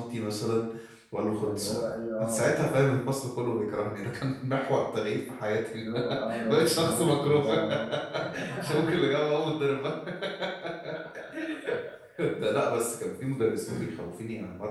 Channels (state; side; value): identical; both; correlation 1.00